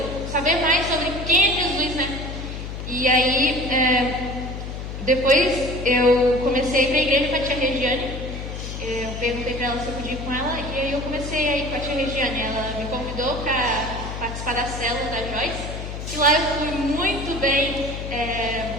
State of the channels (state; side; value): noise; left; hum, 7 dB below the sound